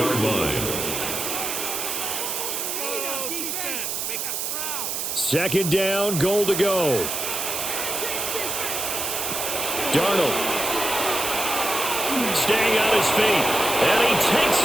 line. Second down, goal to go. Darnold. Staying on his feet. And he takes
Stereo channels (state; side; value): noise; right; hiss, 2 dB below the sound